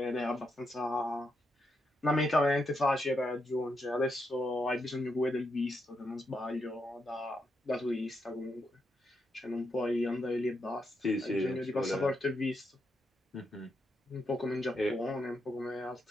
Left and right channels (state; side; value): normal; both; correlation 0.82